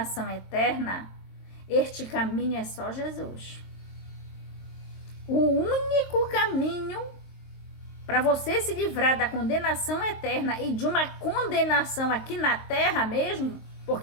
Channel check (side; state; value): right; late; 22 ms